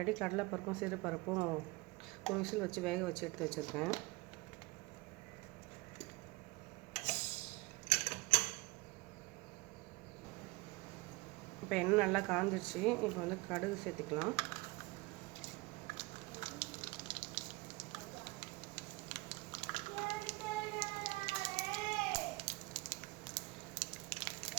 கடலைப்பருப்பும் சிறுபருப்பும் ஒரு விசில் வச்சு வேக வச்சு எடுத்து வச்சுருக்கேன். இப்போ எண்ணெய் நல்லா காஞ்சிடுச்சு. இப்போ வந்து கடுகு சேர்த்துக்கலாம்.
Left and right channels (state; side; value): quieter; left; 23.9 dB